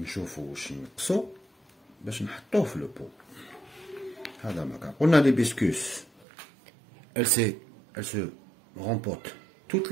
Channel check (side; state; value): left; drops out; at 6.2 s